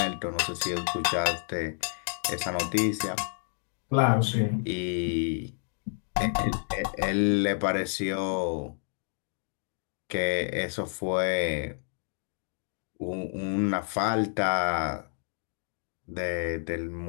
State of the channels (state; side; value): silent; right; digital silence